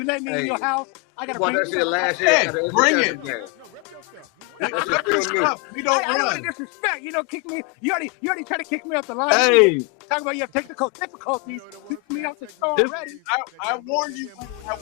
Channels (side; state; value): right; quieter; 28.3 dB